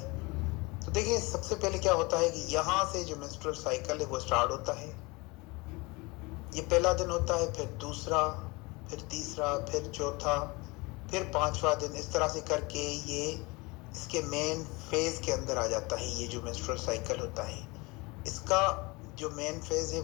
तो देखिए, सबसे पहले क्या होता है कि यहाँ से जो मिस्टर साइकिल है वो स्टार्ट होता है। ये पहला दिन होता है, फिर दूसरा, फिर तीसरा, फिर चौथा, फिर पांचवा दिन, इस तरह से करके ये इसके मेन फेज के अंदर आ जाता है। ये जो मेंस्ट्रुअल साइकिल होता है, इसका जो मेन फेज है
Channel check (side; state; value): right; quieter; 25.2 dB